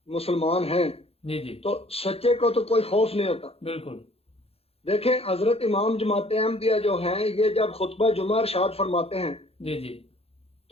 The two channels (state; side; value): late; right; 0.29 ms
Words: مسلمان ہیں جی جی تو سچے کو تو کوئی خوف نہیں ہوتا. بالکل. دیکھیں حضرت امام جماعت احمدیہ جو ہیں یہ جب خطبہ جمعہ ارشاد فرماتے ہیں جی جی